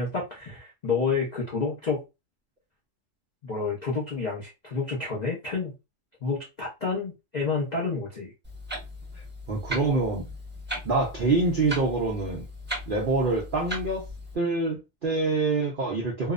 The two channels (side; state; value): both; normal; correlation 0.10